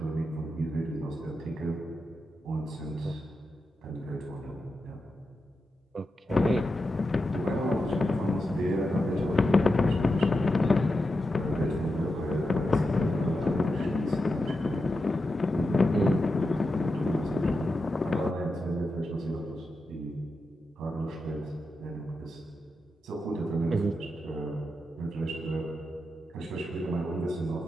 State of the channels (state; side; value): normal; both; correlation 0.88